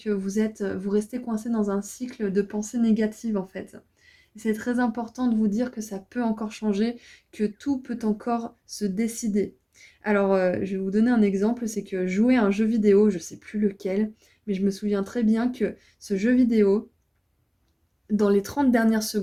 vous restez coincé dans un cycle de pensée négative, en fait. C'est très important de vous dire que ça peut encore changer, que tout peut encore se décider. Alors, je vais vous donner un exemple, c'est que jouer à un jeu vidéo, je sais plus lequel, mais je me souviens très bien que ce jeu vidéo, dans les 30 dernières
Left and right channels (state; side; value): identical; both; correlation 1.00